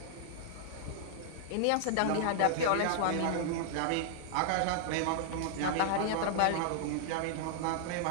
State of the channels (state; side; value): different; both; correlation -0.01